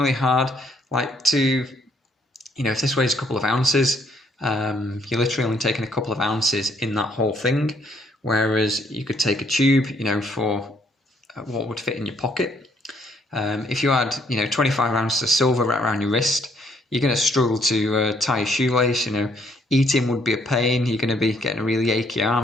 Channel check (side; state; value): both; normal; correlation 0.68